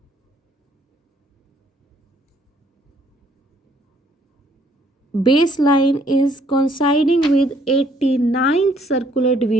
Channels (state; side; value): normal; both; correlation 0.65